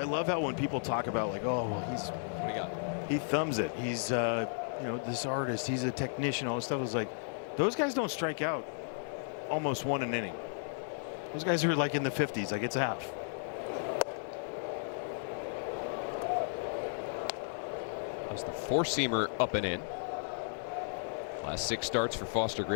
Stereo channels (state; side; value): silent; right; digital silence